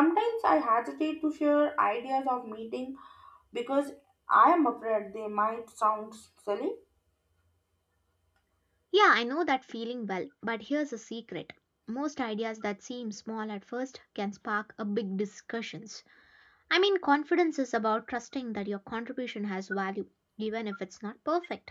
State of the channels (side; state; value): both; identical; correlation 1.00